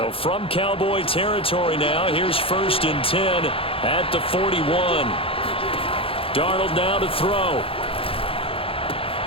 from Cowboy territory now, here's 1st and 10 at the 41. Darnold now to throw.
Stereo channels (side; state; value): right; late; 0.27 ms